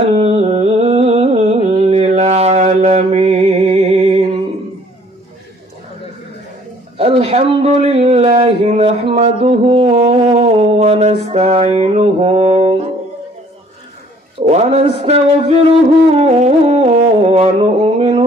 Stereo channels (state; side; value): normal; both; correlation 0.58